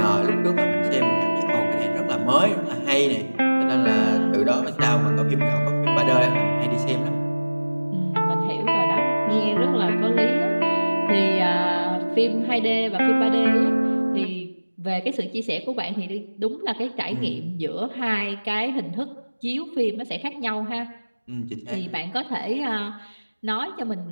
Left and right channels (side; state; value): both; inverted; correlation -1.00